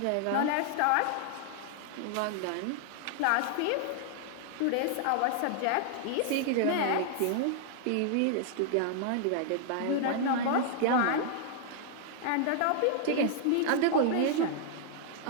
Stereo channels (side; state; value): both; different; correlation -0.01